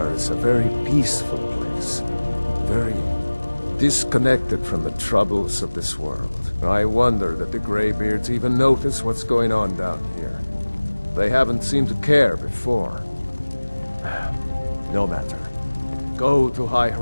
is a very peaceful place. Very disconnected from the troubles of this world. I wonder that the Greybeards even notice what's going on down here. They haven't seemed to care before. No matter. Go to High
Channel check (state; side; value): inverted; both; correlation -1.00